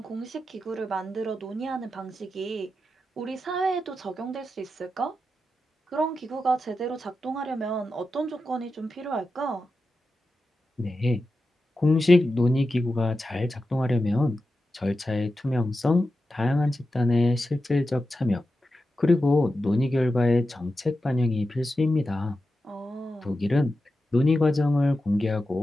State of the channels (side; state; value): both; normal; correlation 0.91